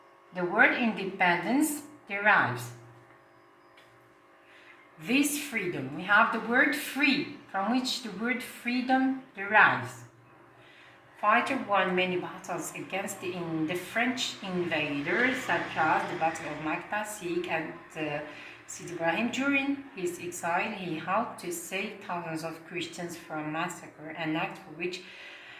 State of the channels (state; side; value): identical; both; correlation 1.00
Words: the word independence derives. This freedom, we have the word free, from which the word freedom derives. Fighter won many battles against the French invaders, such as the Battle of Makta, Sikh, and Sidi Ibrahim. During his exile, he helped to save thousands of Christians from massacre, an act for which